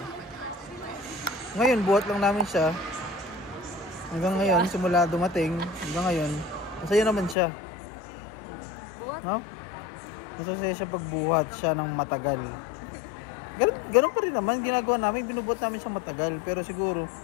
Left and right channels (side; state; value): right; drops out; at 7.4 s